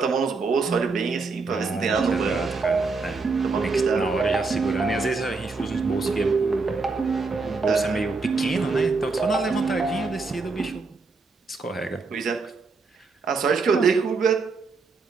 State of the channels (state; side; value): quieter; left; 4.2 dB